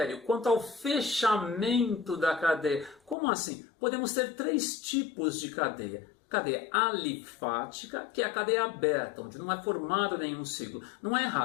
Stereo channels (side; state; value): right; drops out; at 3.2 s